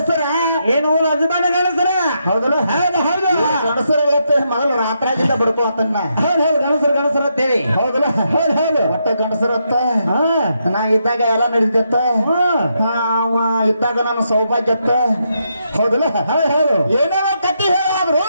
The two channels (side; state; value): both; inverted; correlation -0.80